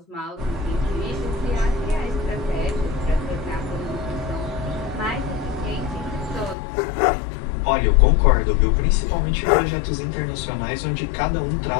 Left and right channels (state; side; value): drops out; right; at 6.6 s